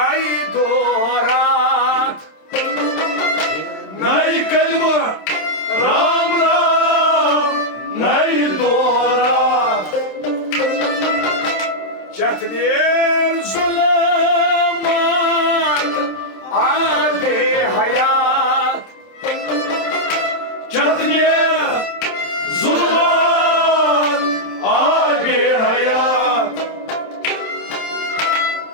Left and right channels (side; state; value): right; late; 27 ms